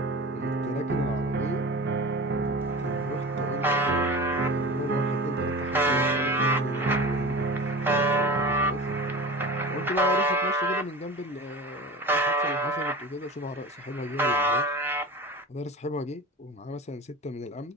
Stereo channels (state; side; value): normal; both; correlation 0.33